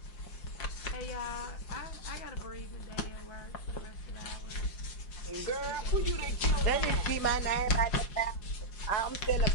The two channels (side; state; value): right; late; 5.6 ms